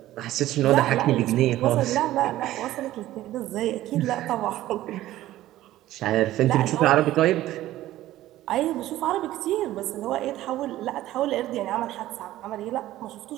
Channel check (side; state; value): left; quieter; 14.8 dB